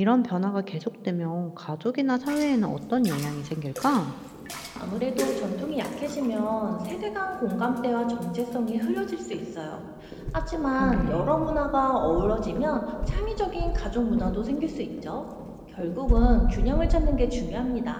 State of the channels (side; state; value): both; identical; correlation 1.00